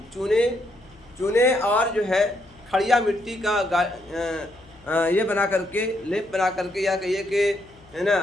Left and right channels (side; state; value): left; noise; hum, 27 dB below the sound